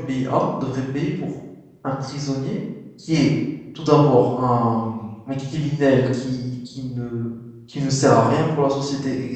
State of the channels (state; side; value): identical; both; correlation 1.00